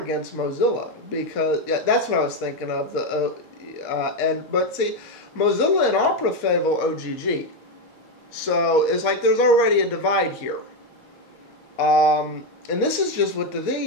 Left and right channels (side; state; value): both; normal; correlation 0.07